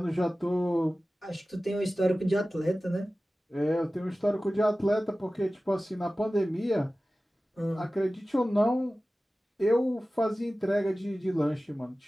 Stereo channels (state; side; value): normal; both; correlation 0.96